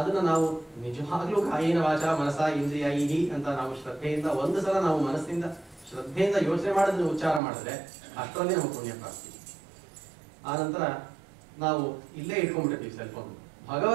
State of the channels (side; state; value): left; drops out; at 7.4 s